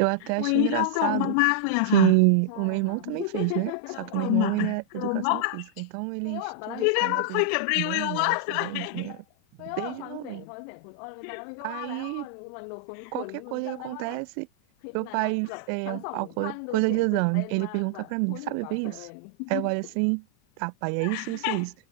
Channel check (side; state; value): both; different; correlation -0.01